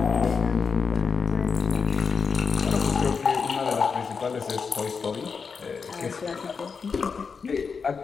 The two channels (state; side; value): quieter; right; 5.5 dB